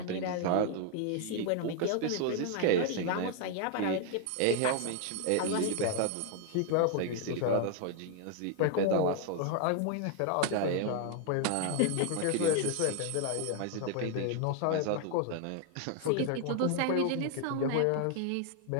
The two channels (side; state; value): both; different; correlation 0.00